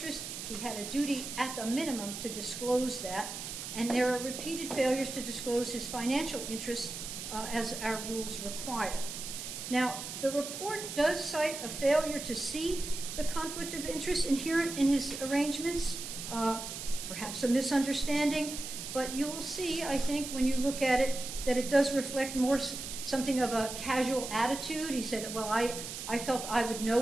he had a duty at the minimum to disclose that. And there are repeated failures to disclose his financial interests as our rules require. Now, the report does cite a failure to see the conflict of interest inherent in his arrangements, perhaps a misunderstanding, but you will see, I think, when you look at it, that it does reflect more something of a casual attitude. He said, well, I felt I would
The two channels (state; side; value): noise; right; hiss, 7 dB below the sound